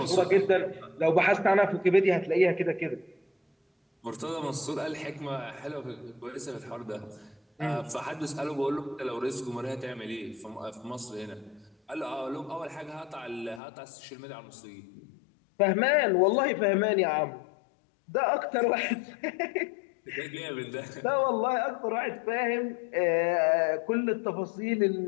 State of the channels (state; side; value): drops out; right; at 13.6 s